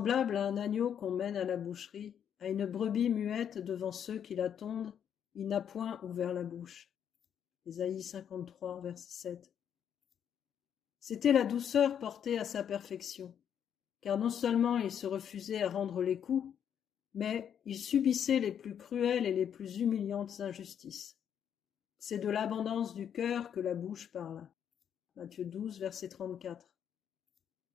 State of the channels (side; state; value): right; quieter; 8.7 dB